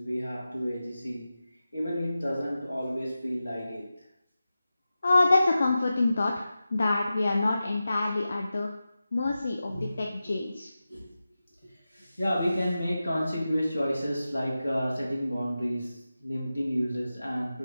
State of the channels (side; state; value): both; inverted; correlation -0.93